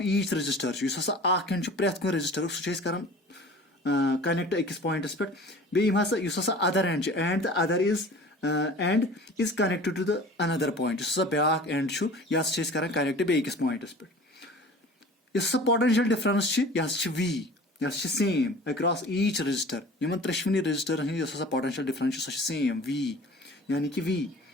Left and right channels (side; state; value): both; normal; correlation 0.42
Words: each resistor प्रेथ कुन रेजिस्टर सह कनेक्ट अकिस पॉइंटस पे बेसा other end and the other is connected to the another point ब्या एंड यह कनेक्ट बेकिस पॉइंटस पे पोटेंशियल डिफरेंस यह V यह same across each resistor in त्रेशवनी रेजिस्टर पोटेंशियल डिफरेंस सह सेम V यानी कि V